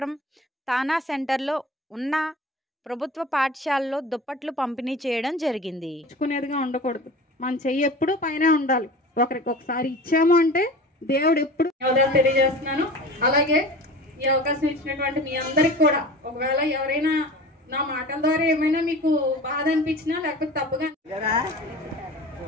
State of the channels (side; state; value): both; normal; correlation 0.37